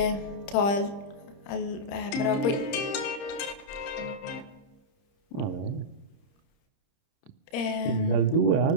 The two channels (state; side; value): late; right; 30 ms